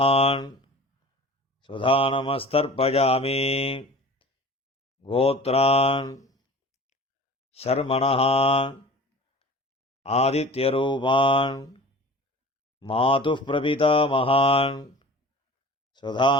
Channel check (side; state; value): both; normal; correlation 0.41